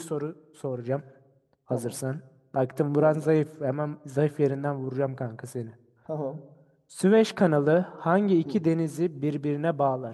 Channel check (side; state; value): both; identical; correlation 1.00